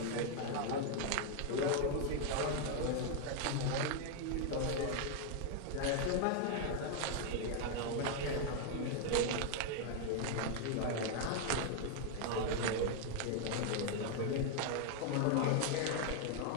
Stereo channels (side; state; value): both; different; correlation 0.00